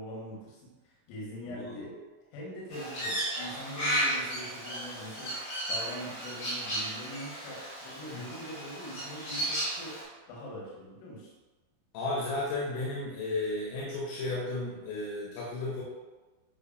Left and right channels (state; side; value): late; right; 26 ms